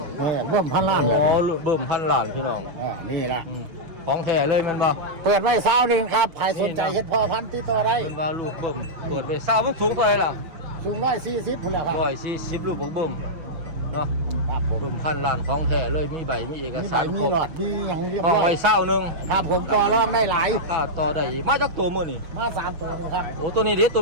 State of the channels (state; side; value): late; left; 6.2 ms